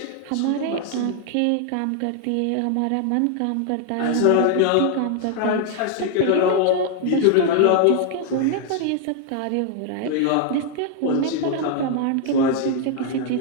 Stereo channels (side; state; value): both; different; correlation 0.00